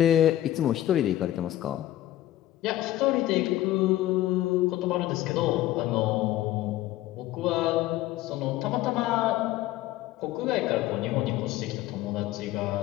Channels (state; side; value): quieter; right; 14.4 dB